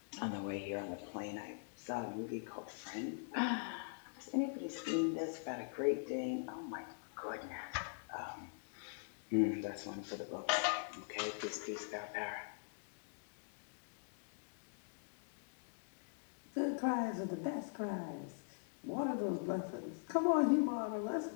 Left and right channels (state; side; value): silent; right; digital silence